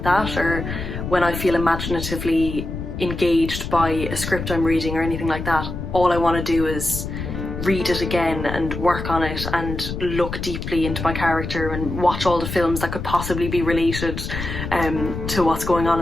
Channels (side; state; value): left; noise; rumble, 6 dB below the sound